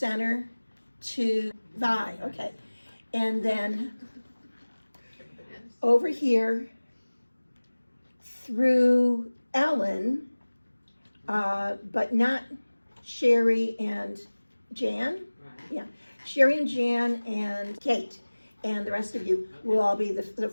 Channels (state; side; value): inverted; both; correlation -1.00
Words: to Vi, okay. And then over here through Ellen, but not Sherry and Jan. Yeah, Sherry and Jan and Kate. and the rest of you will all be the